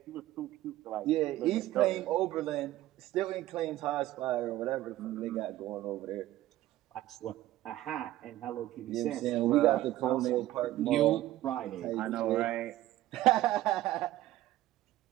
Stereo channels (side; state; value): left; quieter; 15.2 dB